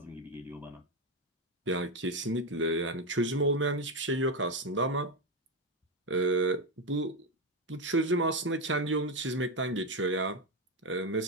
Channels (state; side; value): normal; both; correlation 0.10